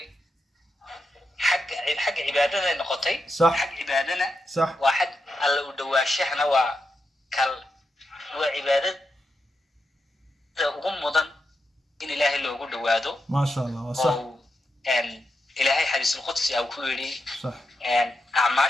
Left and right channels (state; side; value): normal; both; correlation 0.86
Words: حق عبادنا نقطي صح حق عبادنا صح واحد الله ودواشحنا وكل وعبادة وغمضا إن إلهي اللي وجود وادو ما شاء الله صح أن إلهي حديث القدس أو كوري صح أن